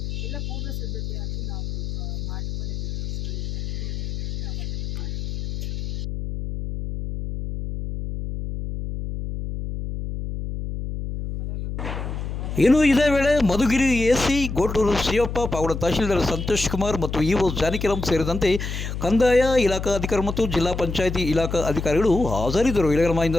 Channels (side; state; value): left; noise; hum, 5 dB below the sound